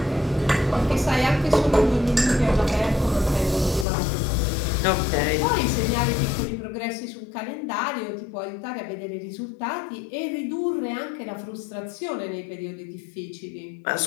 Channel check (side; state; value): right; drops out; at 3.9 s